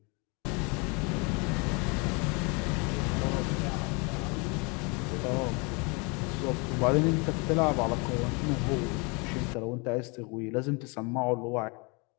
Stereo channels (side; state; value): right; quieter; 30.8 dB